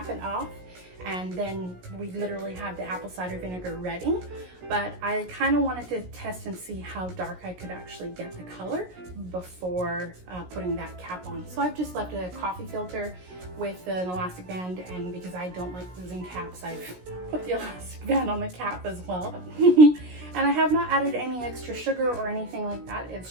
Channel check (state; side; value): late; left; 17 ms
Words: it off, and then we literally have the apple cider vinegar ready. But I kind of wanted to test and see how dark I could actually get the color before putting that cap on. So I've just left a coffee filter with an elastic band, and because I don't like losing caps, I've put the elastic band on the cap as well. And I have not added any extra sugar or anything like that.